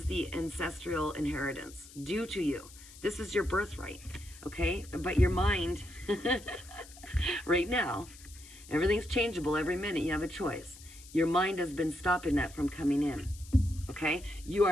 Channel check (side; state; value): left; noise; hiss, 19 dB below the sound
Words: the ancestral inheritance due to you. This is your birthright. Okay? But your mind, right now, everything's changeable every minute. You have a choice. Your mind has been stopping that from coming in. Okay? You